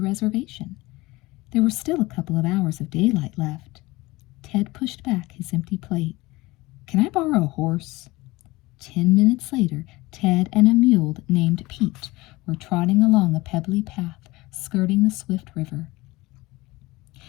reservation. There were still a couple of hours of daylight left. Ted pushed back his empty plate. "Can I borrow a horse?" 10 minutes later, Ted and a mule named Pete were trotting along a pebbly path, skirting the swift river.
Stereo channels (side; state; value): right; quieter; 20.9 dB